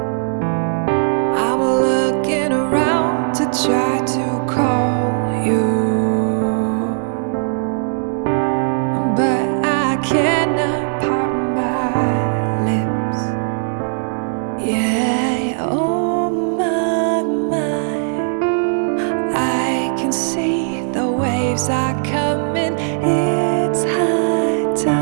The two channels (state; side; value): silent; left; 67 dB below the other